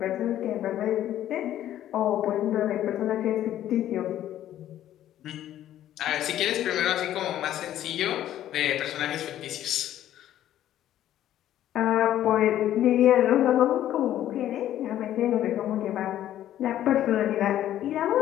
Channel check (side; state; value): right; quieter; 12.2 dB